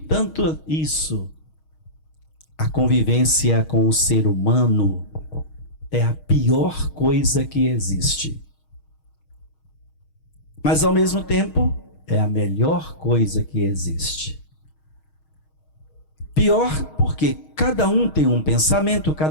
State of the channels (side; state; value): right; late; 6.4 ms